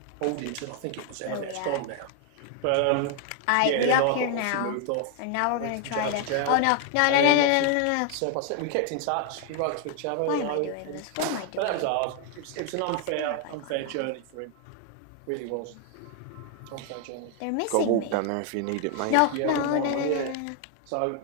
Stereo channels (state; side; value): different; both; correlation 0.00